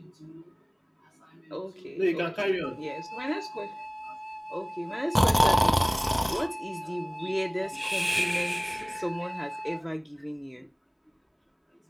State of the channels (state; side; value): identical; both; correlation 1.00